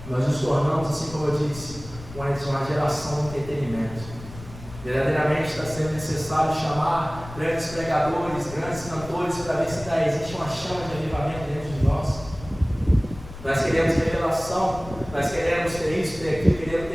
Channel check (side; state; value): left; noise; rumble, 15 dB below the sound